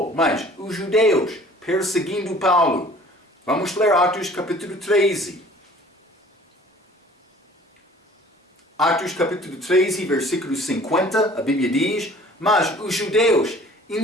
mas os judeus perseguindo Paulo. Vamos ler Atos capítulo 13. Atos capítulo 13, versículo 50, a Bíblia diz: mas os judeus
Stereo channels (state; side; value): normal; both; correlation 0.50